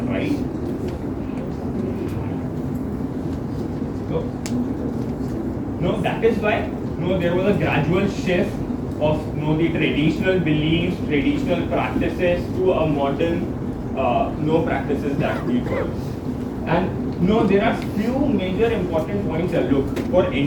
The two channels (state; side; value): identical; both; correlation 1.00